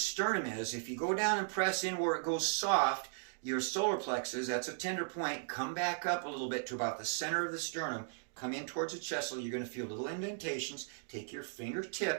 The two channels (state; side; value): silent; left; digital silence